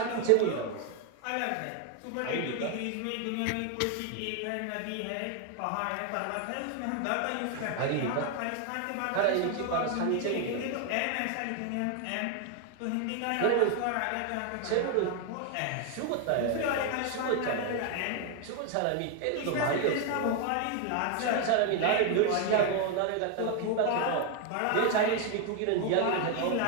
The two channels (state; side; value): different; both; correlation 0.01